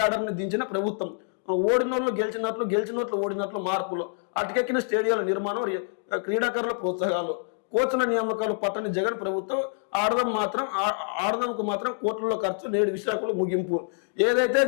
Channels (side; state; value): right; silent; digital silence